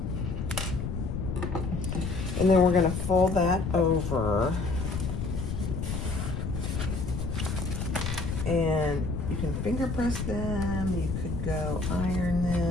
And then we're going to fold that over. And you can finger press them. You could go iron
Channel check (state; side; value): noise; left; rumble, 3 dB below the sound